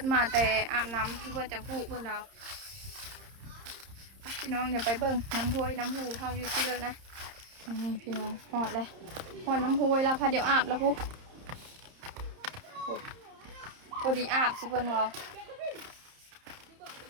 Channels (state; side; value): late; left; 30 ms